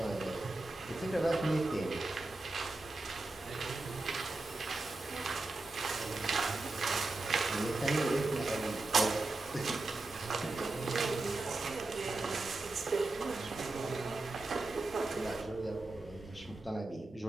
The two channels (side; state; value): left; quieter; 3.1 dB